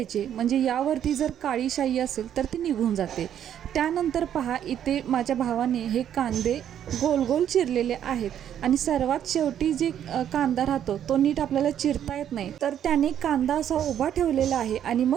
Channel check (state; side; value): quieter; left; 10.0 dB